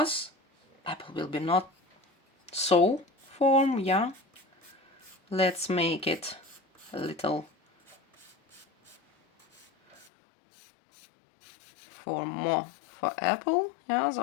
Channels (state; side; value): drops out; right; at 10.1 s